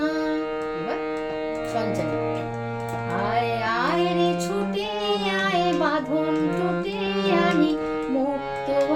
এবার সঞ্চারী। আয় আয় রে ছুটে আয় বাঁধন টুটে আনি মুক্ত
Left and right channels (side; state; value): both; identical; correlation 1.00